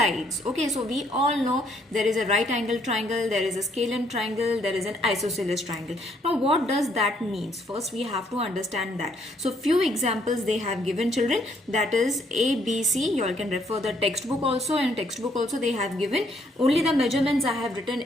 Okay. So we all know there is a right angle triangle, there is a scalene triangle, there is an isosceles triangle. Now what does that mean? First we have to understand that. So few examples they have given children, that is A, B, C. You all can refer the textbook also. In textbook also they have given only the measurements. I have written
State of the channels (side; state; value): both; normal; correlation 0.69